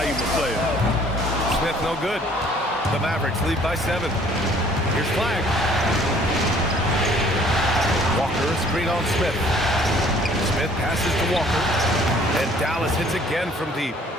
player. Smith no good. The Mavericks lead by 7. Here's Flag. Walker, screen on Smith. Smith passes to Walker. And Dallas hits again from deep.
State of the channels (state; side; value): normal; both; correlation 0.57